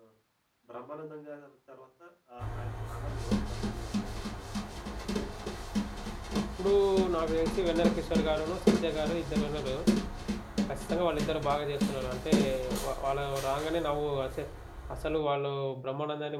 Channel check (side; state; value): both; identical; correlation 1.00